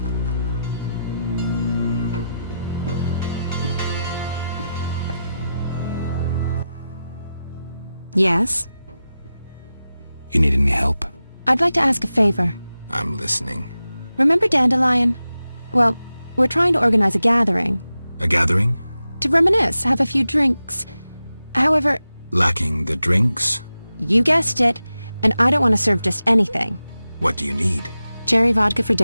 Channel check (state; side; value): inverted; both; correlation -0.92